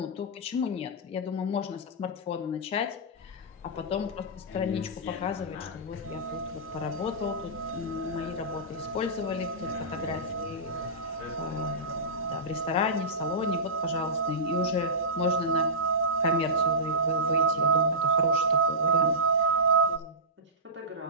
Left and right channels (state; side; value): normal; both; correlation -0.16